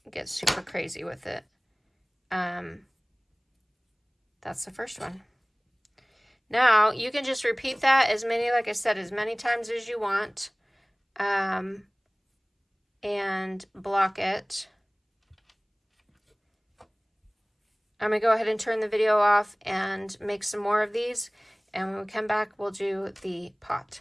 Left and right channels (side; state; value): both; identical; correlation 1.00